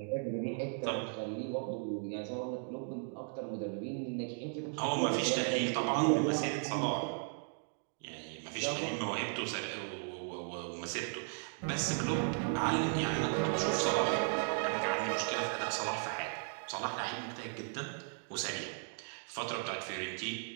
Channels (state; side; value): silent; left; 54 dB below the other